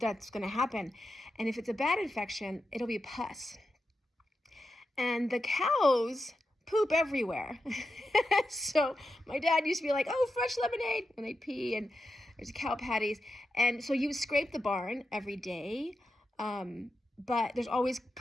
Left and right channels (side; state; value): both; normal; correlation 0.89